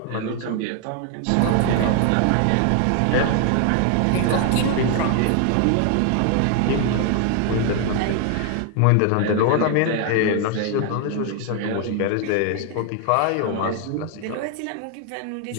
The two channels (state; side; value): different; both; correlation 0.00